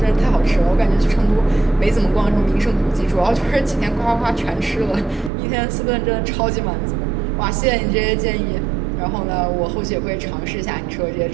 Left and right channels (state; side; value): drops out; left; at 5.3 s